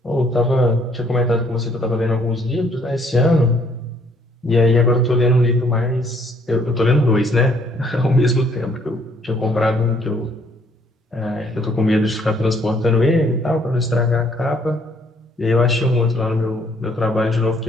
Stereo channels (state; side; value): normal; both; correlation 0.64